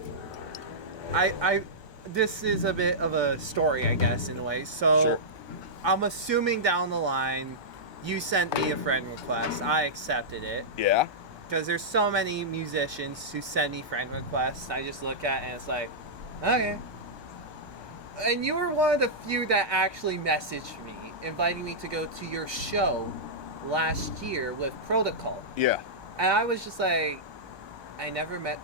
I this is a bit of a story, I guess, in a way. So, Sure. I'm assuming down the line, you sent me a friend request. I accepted it Yeah. because there's so many musicians who send me friend requests. I just look at it and it's like, okay. And you were one of the few that actually messaged me, inviting me to go to your show last year with Protocol. Yeah. And I was just like, I never met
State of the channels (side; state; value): left; late; 1.3 ms